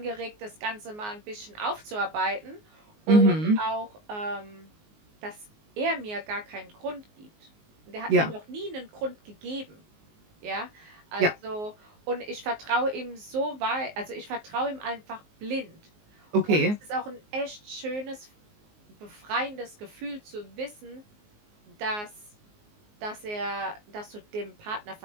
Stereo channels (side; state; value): left; late; 19 ms